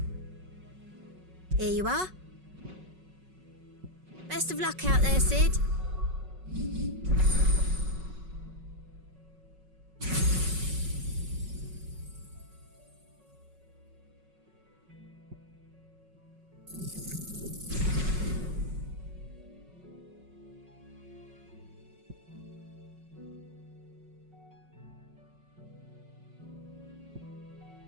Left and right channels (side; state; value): left; late; 5.4 ms